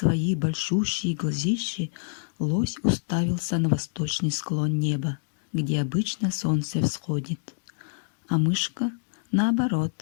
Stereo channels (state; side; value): silent; right; digital silence